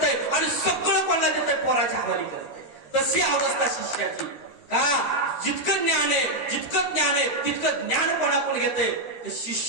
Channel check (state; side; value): late; right; 13 ms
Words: आणि सगळं कोणाला देतोय पोराच्या हवाली करतय. तशी अवस्था शिष्याची का जितकं ज्ञान आहे तितकं ज्ञान कोणाकडून घेते